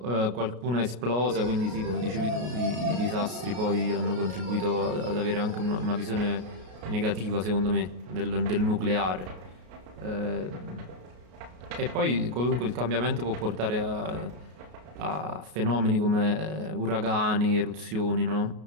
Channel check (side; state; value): left; late; 33 ms